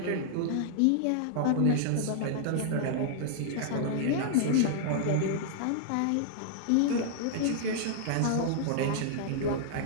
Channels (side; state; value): both; different; correlation -0.01